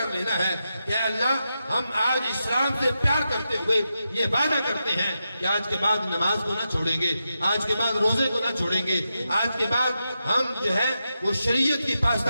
لینا ہے کہ اللہ ہم آج اسلام سے پیار کرتے ہوئے یہ وعدہ کرتے ہیں کہ آج کے بعد نماز کو نہ چھوڑیں گے، آج کے بعد روزے کو نہ چھوڑیں گے، آج کے بعد ہم جو ہے وہ شریعت کی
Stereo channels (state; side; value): inverted; both; correlation -0.88